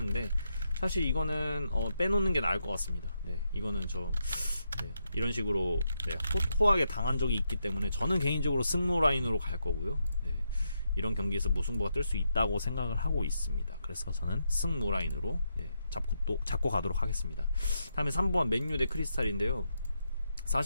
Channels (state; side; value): inverted; both; correlation -0.82